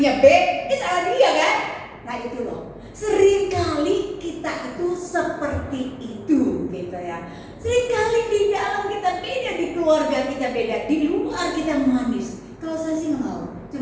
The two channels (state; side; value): identical; both; correlation 1.00